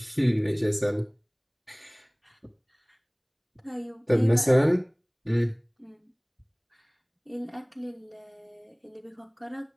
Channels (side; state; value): both; identical; correlation 1.00